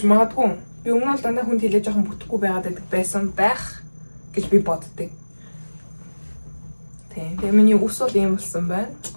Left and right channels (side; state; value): both; inverted; correlation -1.00